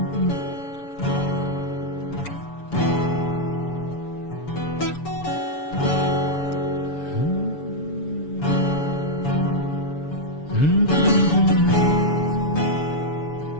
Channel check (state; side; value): late; right; 6.9 ms